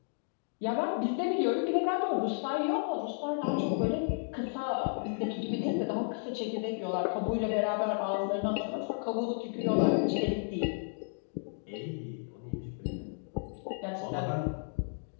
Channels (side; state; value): right; silent; digital silence